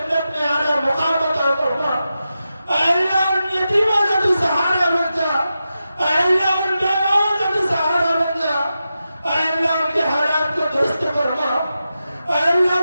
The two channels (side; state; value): both; inverted; correlation -0.90